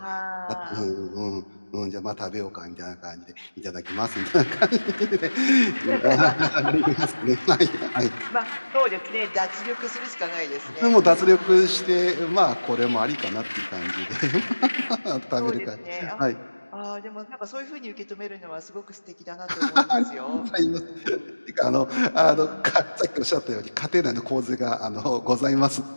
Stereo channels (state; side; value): inverted; both; correlation -1.00